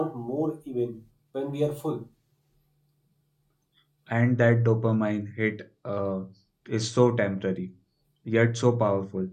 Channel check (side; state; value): both; identical; correlation 1.00